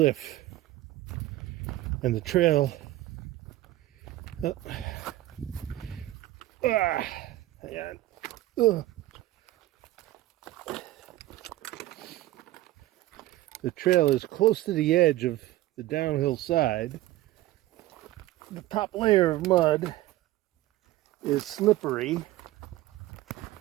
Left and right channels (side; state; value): left; quieter; 15.9 dB